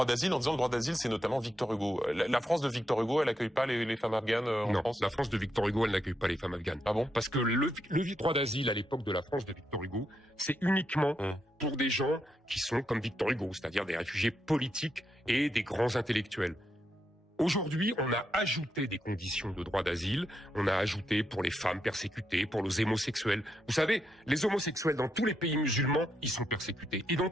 d'asile en disant le droit d'asile c'est notamment Victor Hugo. La France de Victor Hugo, elle accueille pas les femmes afghanes en France? Non, la France de Victor Hugo, elle n'accueille pas les femmes afghanes. Ah bon? Parce que le droit d'asile à l'époque de la France de Victor Hugo, c'est uniquement pour des gens qui sont comme Victor Hugo, c'est-à-dire des réfugiés politiques et des grands intellectuels. Aujourd'hui, on a ajouté des conditions de droit d'asile, on a ajouté pour les femmes persécutées, pour les homosexuels. Vous savez, les homosexuels dans tous les pays musulmans, ils sont persécutés, et dans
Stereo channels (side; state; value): both; normal; correlation 0.82